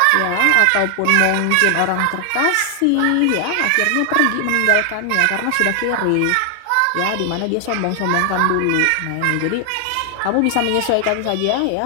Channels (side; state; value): both; different; correlation 0.00